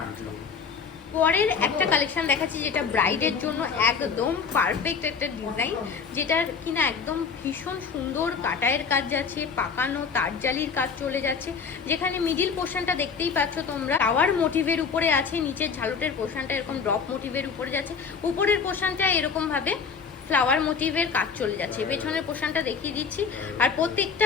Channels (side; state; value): right; quieter; 5.8 dB